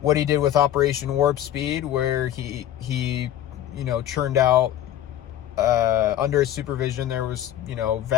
What he did with Operation Warp Speed, where he churned out, under his supervision, there was,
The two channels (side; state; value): right; quieter; 11.7 dB